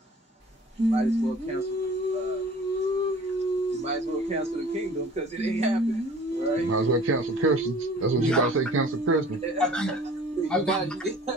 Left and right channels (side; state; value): both; normal; correlation 0.47